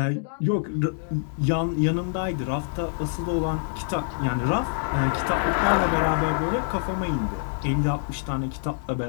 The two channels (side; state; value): right; silent; digital silence